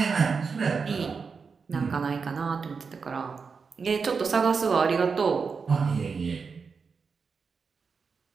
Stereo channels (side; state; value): left; quieter; 5.3 dB